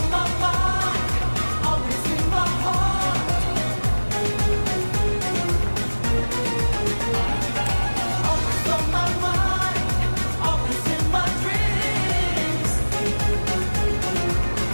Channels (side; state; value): both; inverted; correlation -1.00